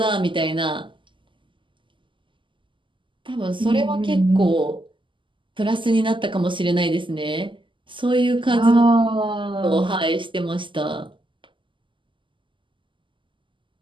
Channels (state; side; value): late; left; 0.24 ms